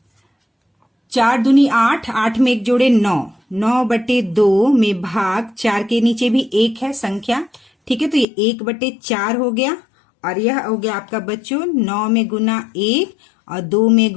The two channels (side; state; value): right; drops out; at 8.2 s